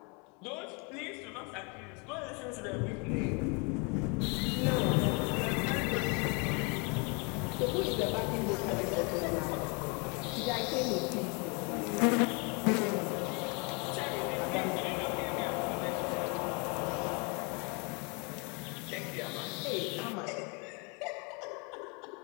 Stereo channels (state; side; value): quieter; right; 32.3 dB